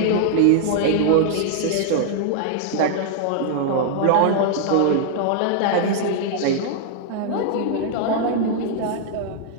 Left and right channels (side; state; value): both; different; correlation -0.01